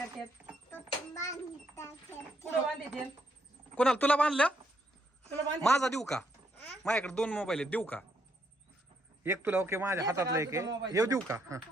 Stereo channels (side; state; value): both; normal; correlation 0.75